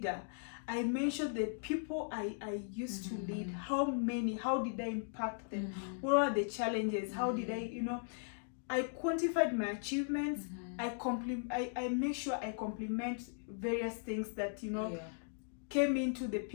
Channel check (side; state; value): right; silent; digital silence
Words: I mentioned the people I used to lead. How did I impact them? What are the challenges? How did I quantified my achievements. I make sure I compliment various things that came into the